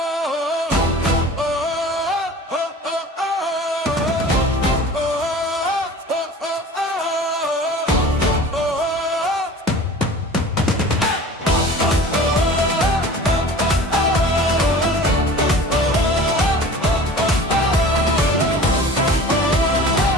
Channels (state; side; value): normal; both; correlation 0.41